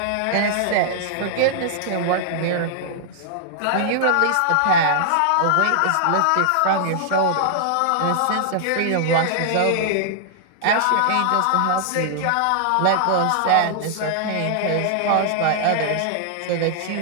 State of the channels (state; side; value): different; both; correlation -0.01